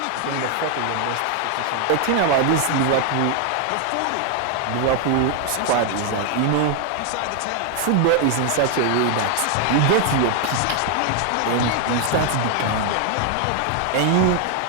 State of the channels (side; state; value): both; different; correlation 0.00